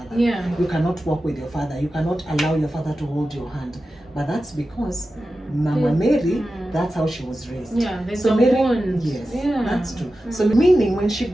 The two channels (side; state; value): both; normal; correlation 0.93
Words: Yeah. You cannot walk with your father. You cannot allow your father to hold your hand. But that's because Mama Mary, that's how she was raised. Yeah, there's so a Mary, bond. yes, Yeah. that's true. So meaning when she